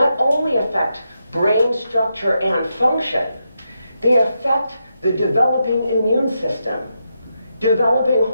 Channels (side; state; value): both; inverted; correlation -0.84